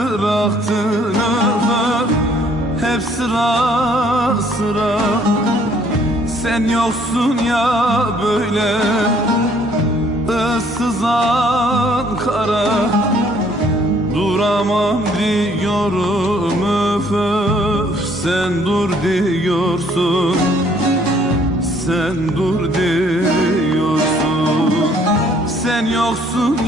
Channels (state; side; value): normal; both; correlation 0.62